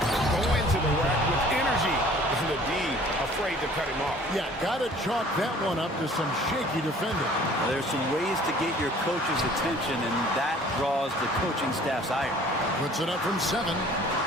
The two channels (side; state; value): both; normal; correlation 0.52